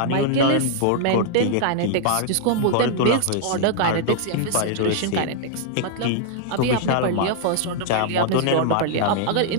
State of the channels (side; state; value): both; different; correlation -0.01